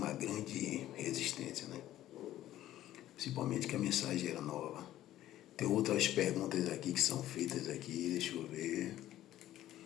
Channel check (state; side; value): quieter; right; 13.5 dB